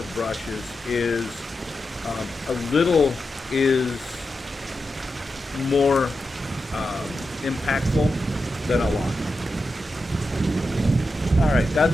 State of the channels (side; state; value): both; normal; correlation 0.89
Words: brushes is a little is more impactful than a lot. All right, that's